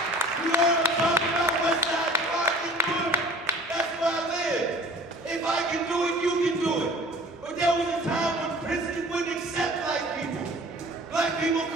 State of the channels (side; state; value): both; normal; correlation 0.47